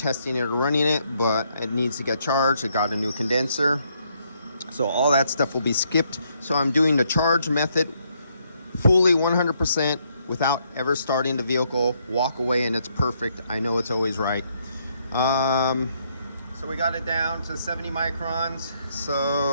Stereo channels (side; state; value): both; inverted; correlation -0.73